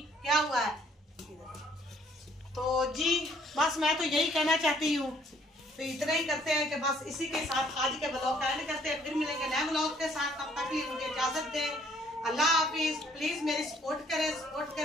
क्या हुआ है। तो जी बस मैं तो यही कहना चाहती हूँ, तो इतना ही करते हैं कि बस इसी के साथ आज के व्लॉग का एंड करते हैं। फिर मिलेंगे नए व्लॉग के साथ, तब तक लिए मुझे इजाजत दें। अल्लाह हाफिज। प्लीज मेरी सपोर्ट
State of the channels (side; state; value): both; normal; correlation 0.62